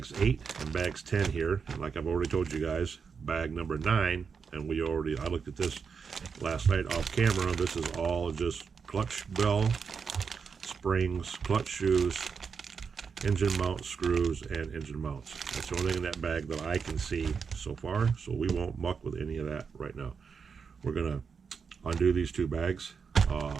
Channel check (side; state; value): left; quieter; 5.9 dB